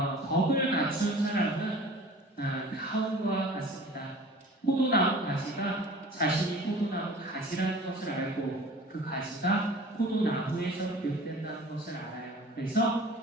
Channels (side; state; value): both; normal; correlation 0.43